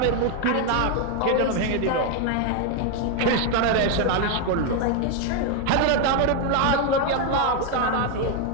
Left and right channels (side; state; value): both; different; correlation 0.01